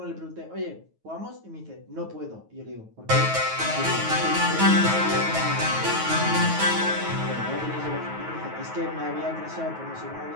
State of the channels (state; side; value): late; left; 9.3 ms